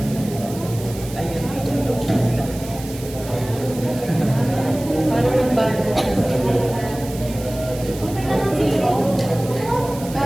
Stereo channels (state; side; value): noise; right; hiss, 15 dB below the sound